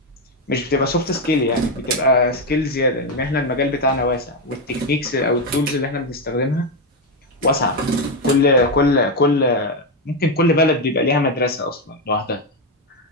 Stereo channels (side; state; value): both; normal; correlation 0.07